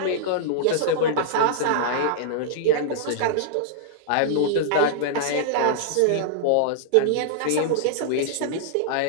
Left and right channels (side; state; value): both; different; correlation -0.01